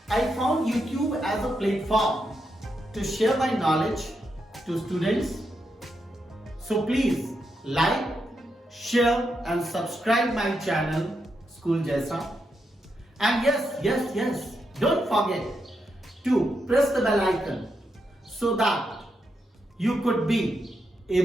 I found YouTube as a platform to share my knowledge to students. So please like, share and subscribe my channel School Jaisa. And yes, don't forget to press the bell icon so that you could be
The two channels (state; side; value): normal; both; correlation 0.83